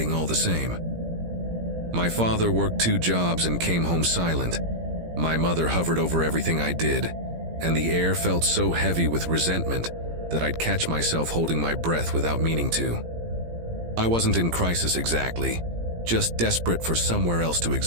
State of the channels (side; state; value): left; late; 17 ms